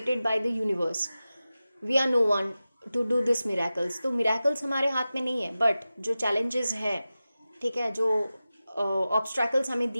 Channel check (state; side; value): inverted; both; correlation -0.95